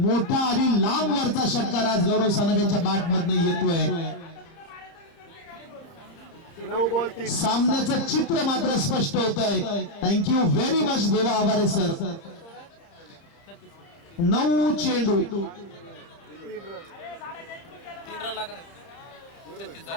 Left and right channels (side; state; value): right; late; 31 ms